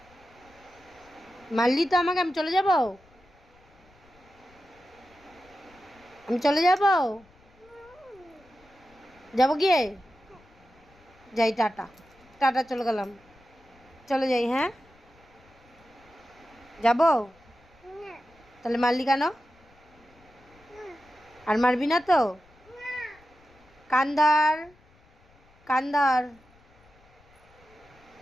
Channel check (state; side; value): noise; left; rumble, 29 dB below the sound